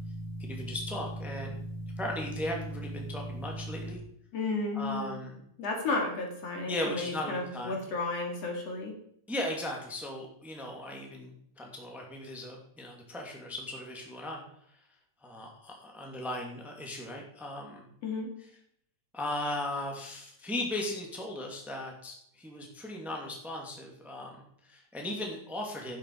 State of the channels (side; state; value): both; normal; correlation 0.28